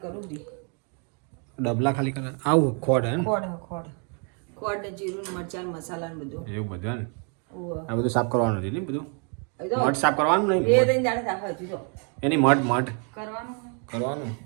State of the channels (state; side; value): quieter; left; 38.5 dB